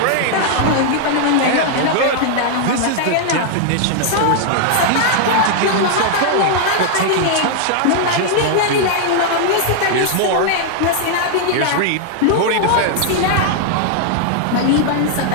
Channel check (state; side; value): different; both; correlation 0.00